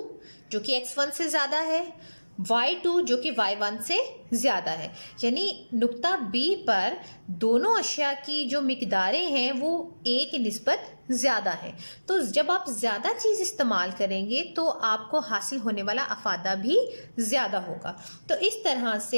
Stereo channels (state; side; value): inverted; both; correlation -1.00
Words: जो कि X1 से ज़्यादा है, Y2 जो कि Y1 से ज़्यादा है, यानी नुक्ता B पर दोनों अशिया की जो मिकदारें हैं वो A की निस्बत ज़्यादा है। तो जब आप ज़्यादा चीज़ इस्तेमाल करेंगे तो आपको हासिल होने वाला अफादा भी ज़्यादा होगा। तो इस तरह